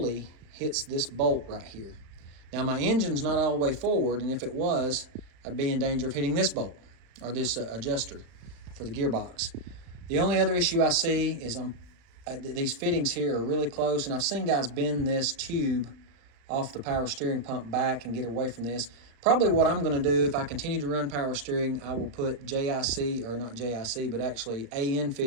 hits this bolt right here. Now my engine's not all the way forward, and if it was, I'd be in danger of hitting this bolt, or this adjuster for the gearbox. The only other issue I see is these fittings here are really close, and I've seen guys bend this tube off the power steering pump back and get away from this. Probably what I'm going to do, if I continue to run power steering, I will put JIC, or not JIC, but actually AN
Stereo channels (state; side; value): late; left; 35 ms